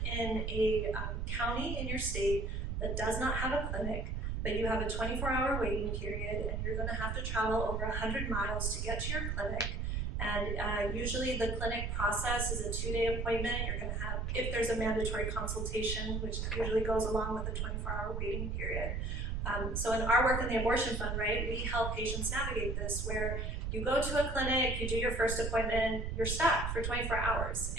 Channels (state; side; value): noise; right; rumble, 1 dB below the sound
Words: in a county in your state that does not have a clinic, but you have a 24-hour waiting period and you're going to have to travel over 100 miles to get to your clinic, and usually the clinic process is a 2-day appointment. You're going to have, if there's a mandatory consultation, which usually goes along with the 24-hour waiting period. So in our work in the Abortion Fund, right, we help patients navigate this, where you go to a clinic, you do your first appointment, you're stuck for 24 hours.